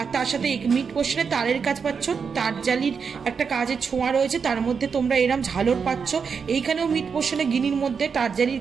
তার সাথে মিড পোর্শনে তারের কাজ পাচ্ছ, তারজালির একটা কাজের ছোঁয়া রয়েছে, তার মধ্যে তোমরা এরম ঝালর পাচ্ছ। এইখানেও মিড পোর্শনে গিনির মধ্যে তারজালির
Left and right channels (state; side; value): quieter; left; 6.0 dB